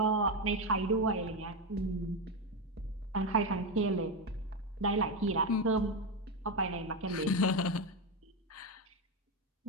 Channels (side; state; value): both; normal; correlation 0.11